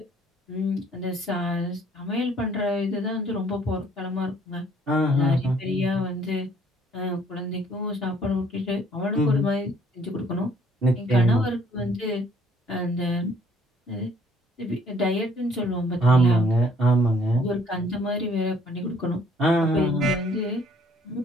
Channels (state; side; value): normal; both; correlation 0.61